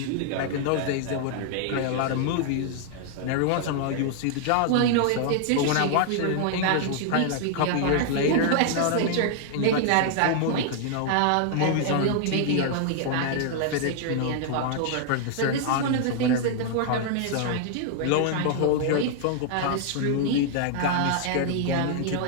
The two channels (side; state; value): both; different; correlation 0.00